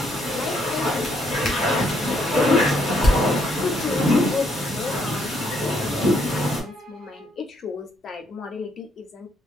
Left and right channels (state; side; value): normal; both; correlation 0.71